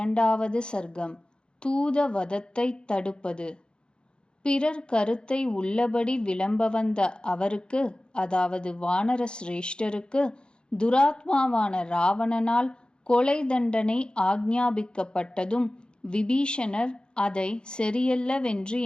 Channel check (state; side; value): late; right; 0.050 ms